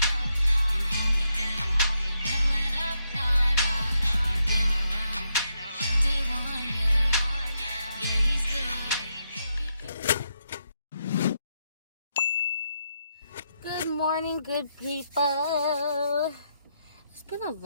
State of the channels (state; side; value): inverted; both; correlation -0.80